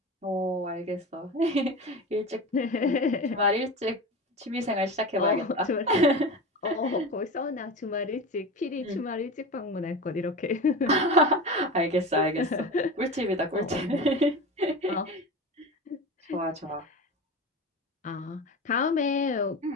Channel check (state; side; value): normal; both; correlation 0.28